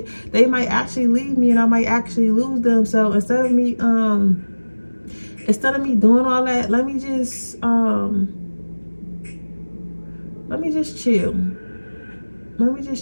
they might actually leave me and I might actually lose them. So instead of me doing all that, let me just chill. Let me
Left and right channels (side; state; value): both; inverted; correlation -1.00